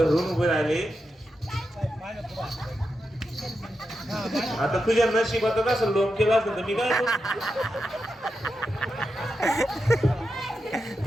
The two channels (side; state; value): both; normal; correlation 0.88